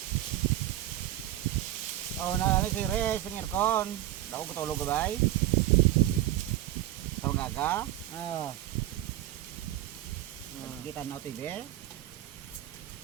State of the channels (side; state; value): left; quieter; 14.2 dB